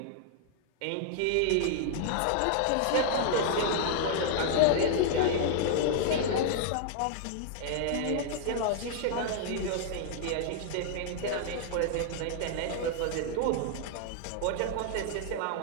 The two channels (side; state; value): both; different; correlation -0.01